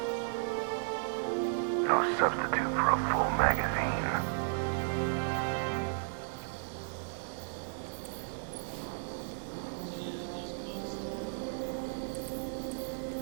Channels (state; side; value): silent; left; digital silence